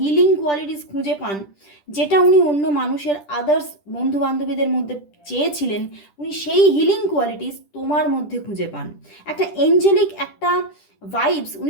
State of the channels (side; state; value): right; late; 10 ms